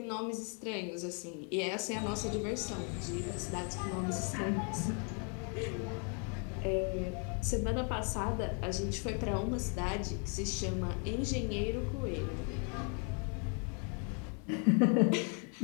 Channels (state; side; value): quieter; right; 39.0 dB